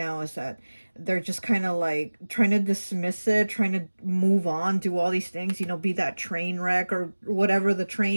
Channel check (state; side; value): inverted; both; correlation -1.00